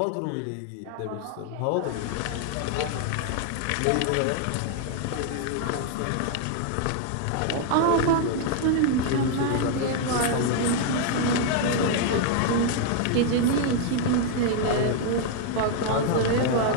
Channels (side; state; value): both; different; correlation 0.00